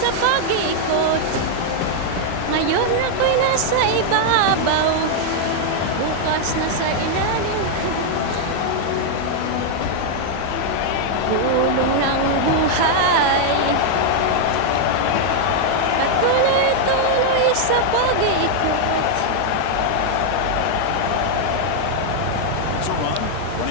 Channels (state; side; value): different; both; correlation 0.00